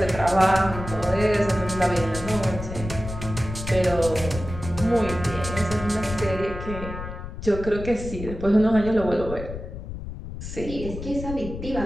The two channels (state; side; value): noise; left; rumble, 9 dB below the sound